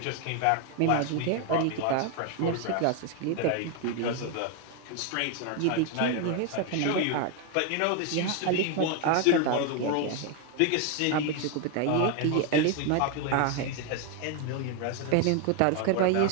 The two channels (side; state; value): both; different; correlation 0.01